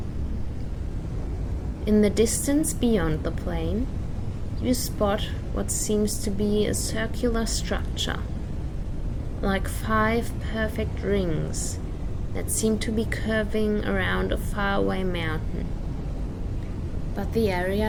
In the distance beyond the plain, you spot what seems to be a circular structure, like 5 perfect rings that seem to be curving around a faraway mountain. But the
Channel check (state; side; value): identical; both; correlation 1.00